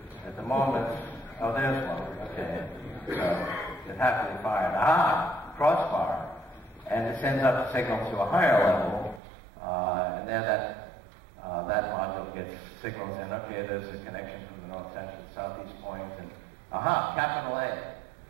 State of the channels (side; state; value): left; drops out; at 9.2 s